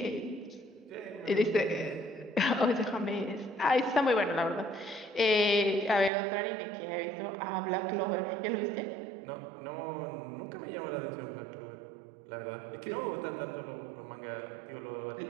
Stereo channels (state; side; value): drops out; left; at 6.1 s